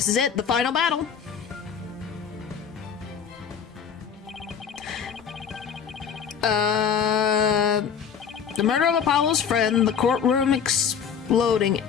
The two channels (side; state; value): right; quieter; 7.3 dB